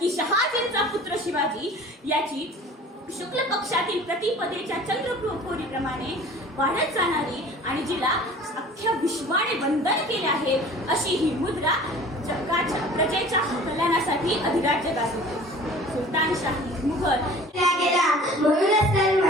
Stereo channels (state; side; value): normal; both; correlation 0.45